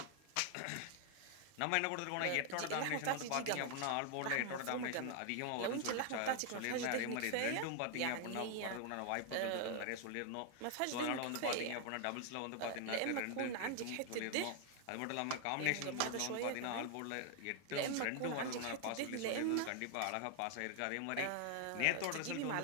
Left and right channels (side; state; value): both; different; correlation 0.00